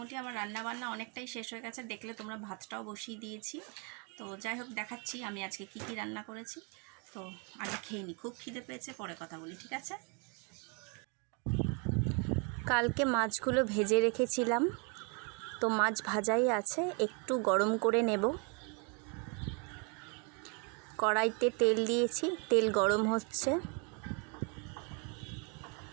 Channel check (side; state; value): left; quieter; 35.0 dB